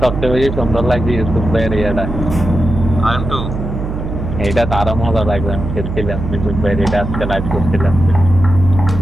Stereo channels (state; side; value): noise; right; hum, 6 dB below the sound